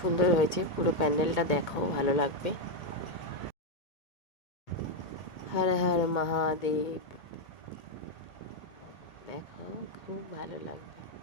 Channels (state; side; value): late; right; 1.8 ms